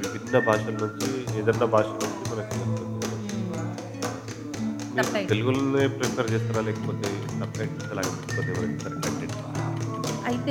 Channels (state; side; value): identical; both; correlation 1.00